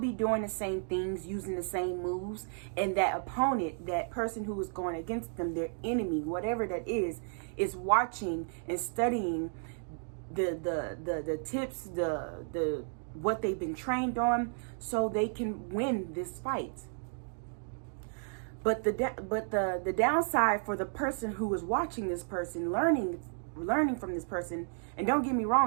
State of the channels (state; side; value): silent; left; 56 dB below the other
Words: doing the same things, using the same moves, and that opponent, that person who is going against them, their enemy, whatever that is watching and studying the tips, the what they've been trained on, so they can win this fight. But the downside for the person who is watching this person, learning from this person, and don't get me